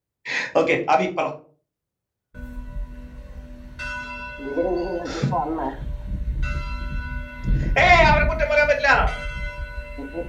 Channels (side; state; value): both; identical; correlation 1.00